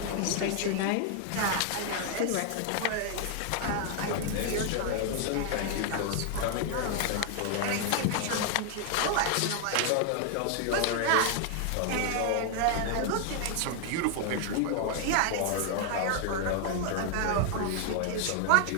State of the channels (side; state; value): both; different; correlation 0.00